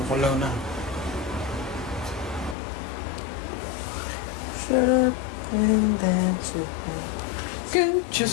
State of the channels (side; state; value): right; drops out; at 2.6 s